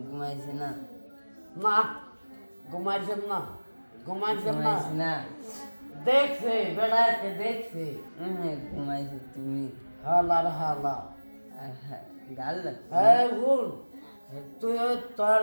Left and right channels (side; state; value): both; inverted; correlation -1.00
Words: ঘুমাইছি না। না ঘুমাইছে না, ঘুমাইছে না, ঘুমাইছি না। দেখছে বেড়াইতে দেখছে। ঘুমাইছি তুমি। হালার হালা গাল ভুল তুই তোর